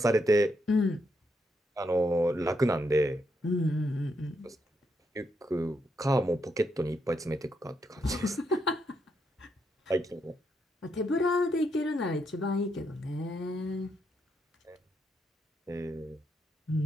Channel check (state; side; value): normal; both; correlation 0.79